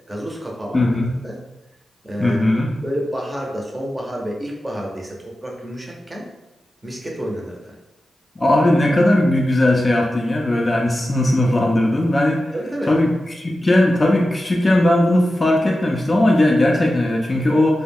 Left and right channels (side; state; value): both; normal; correlation 0.93